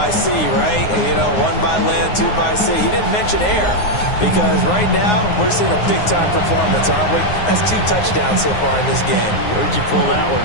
sea, right? You know, 1 by land, 2 by sea. He didn't mention air because right now we're seeing a big-time performance, aren't we? That's 2 touchdowns so far in this game. Where'd you pull that one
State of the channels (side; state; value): right; late; 9.6 ms